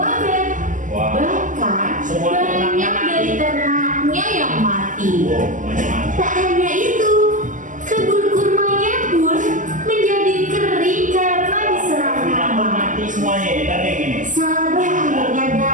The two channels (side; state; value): left; late; 0.37 ms